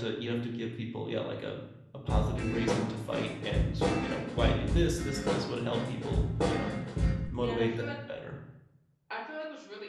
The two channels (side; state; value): both; identical; correlation 1.00